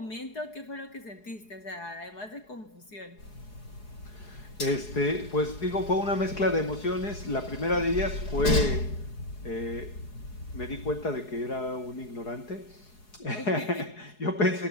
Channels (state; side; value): late; right; 4.8 ms